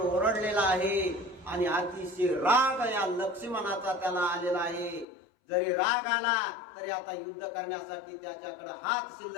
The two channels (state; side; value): drops out; right; at 5.1 s